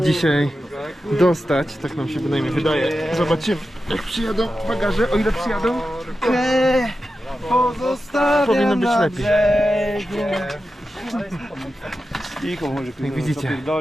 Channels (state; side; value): normal; both; correlation 0.91